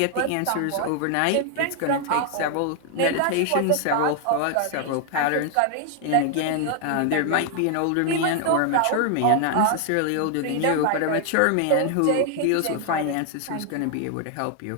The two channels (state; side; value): different; both; correlation 0.00